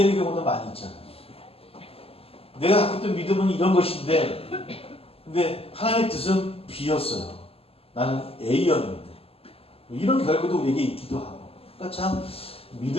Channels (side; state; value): right; late; 0.28 ms